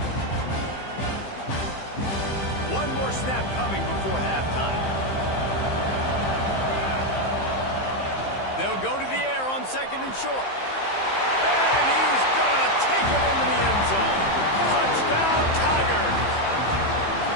One more snap coming before halftime. They'll go to the air on 2nd and short. And he's going to take it into the end zone. Touchdown, Tigers.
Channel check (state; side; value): late; right; 15 ms